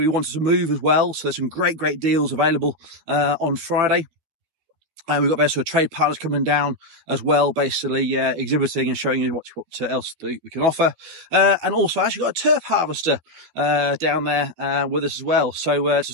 wanted to move as well. So there's some great deals available on Friday. And we've got basically trade partners coming down as well, basically exhibiting and showing you what else we can offer. And also I actually got a turf harvester down there with us as well. So to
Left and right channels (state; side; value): late; left; 13 ms